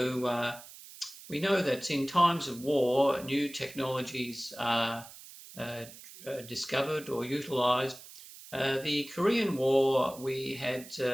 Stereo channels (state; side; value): noise; right; hiss, 17 dB below the sound